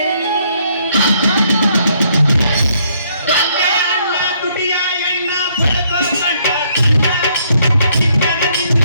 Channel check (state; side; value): inverted; both; correlation -0.69